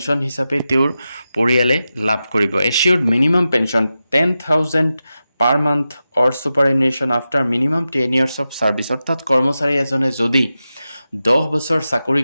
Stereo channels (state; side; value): inverted; both; correlation -0.92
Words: হিচাপে তেওঁৰ পৰিয়ালে লাভ কৰিব। এচিউৰ্ড minimum pension 10,000 per month or superannuation after minimum 10 years of service. অৰ্থাৎ কৰ্মচাৰী এজনে যদি 10 বছৰ চাকৰি